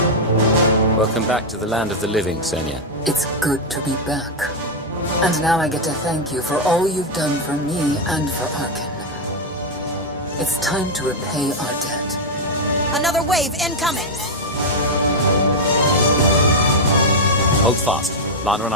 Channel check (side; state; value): both; normal; correlation 0.01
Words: Welcome back to the land of the living, Senya. It's good to be back. And now I get to thank you for all you've done for me and for Arkan. It's time to repay our debt. Another wave incoming! Hold fast. Lana and